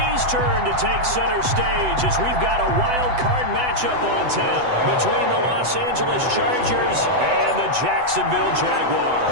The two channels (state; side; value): late; left; 8.0 ms